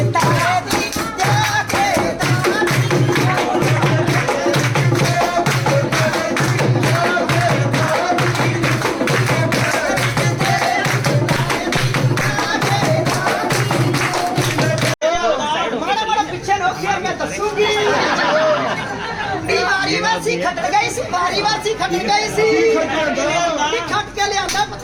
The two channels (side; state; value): both; identical; correlation 1.00